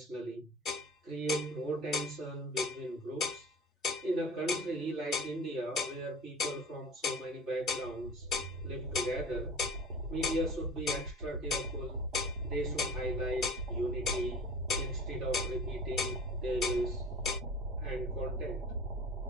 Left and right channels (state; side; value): normal; both; correlation 0.39